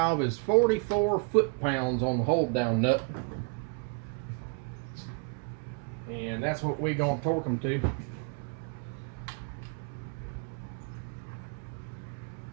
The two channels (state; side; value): quieter; left; 33.7 dB